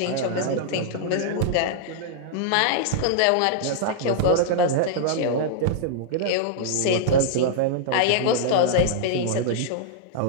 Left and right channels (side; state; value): both; different; correlation -0.01